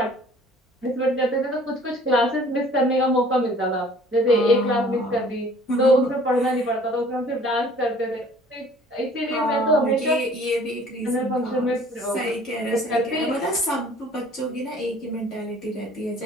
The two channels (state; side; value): normal; both; correlation 0.52